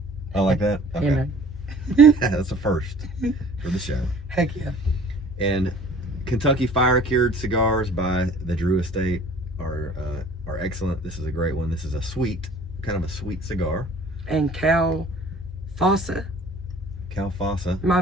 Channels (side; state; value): both; normal; correlation 0.50